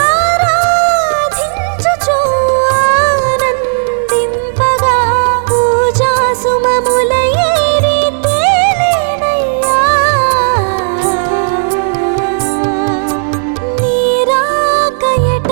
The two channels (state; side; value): silent; left; digital silence